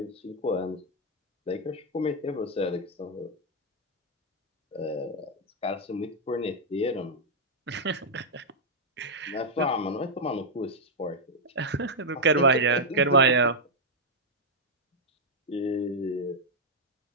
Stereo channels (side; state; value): both; normal; correlation -0.03